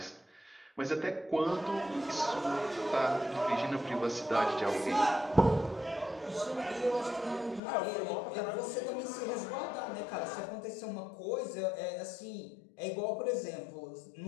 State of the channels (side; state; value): right; drops out; at 7.6 s